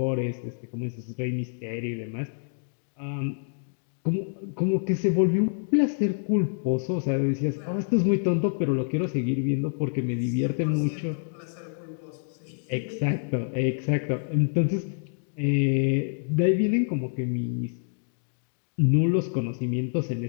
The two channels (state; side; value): silent; right; digital silence